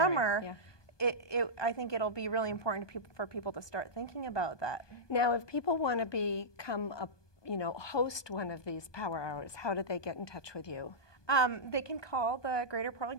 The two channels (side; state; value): right; late; 1.2 ms